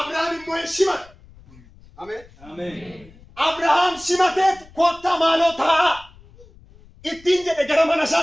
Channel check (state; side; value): noise; left; rumble, 24 dB below the sound